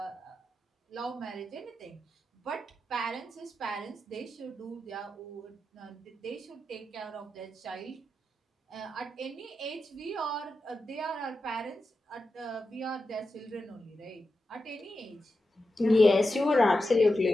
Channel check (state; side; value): normal; both; correlation 0.90